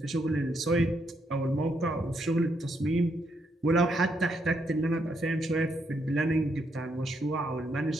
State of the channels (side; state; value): both; normal; correlation 0.77